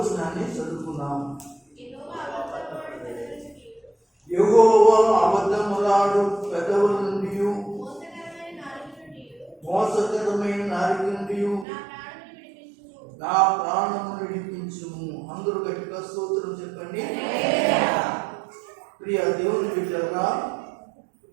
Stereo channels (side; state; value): left; drops out; at 11.7 s